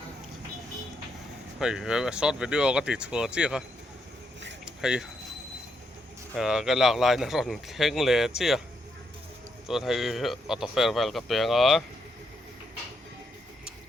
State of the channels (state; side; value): normal; both; correlation 0.78